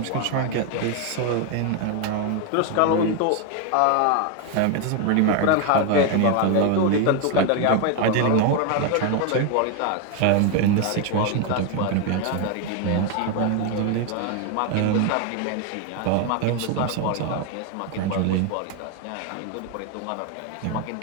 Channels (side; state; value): both; different; correlation 0.01